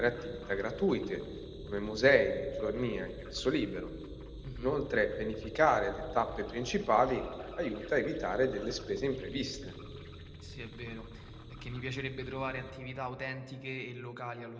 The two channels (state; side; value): identical; both; correlation 1.00